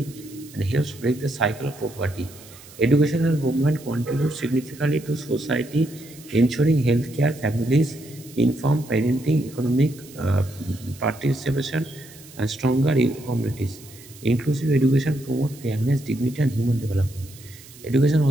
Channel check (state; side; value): noise; right; hiss, 20 dB below the sound